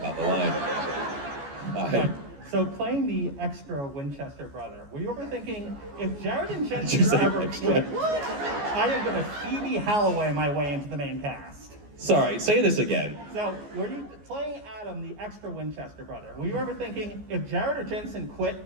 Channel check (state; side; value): late; left; 14 ms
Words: the line. Hi. So playing the extra Winchester brother, were you ever thinking, if Jared and you Jensen say ever extra? quit, I am gonna Phoebe Halloway my way into the main cast? Sorry, say this again. So, were you playing Adam, the extra Winchester brother? Were you ever thinking, if Jared or Jensen quit,